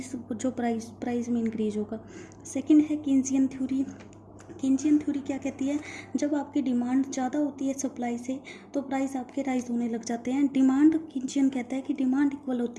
जो प्राइस में इंक्रीज होगा। सेकंड है कीन्सियन थ्योरी। कीन्सियन थ्योरी क्या कहती है, जब आपकी डिमांड ज़्यादा होती है सप्लाई से तो प्राइस आपके राइज होने लग जाते हैं। डिमांड, कीन्सियन कहता है कि डिमांड इक्वल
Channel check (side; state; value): both; identical; correlation 1.00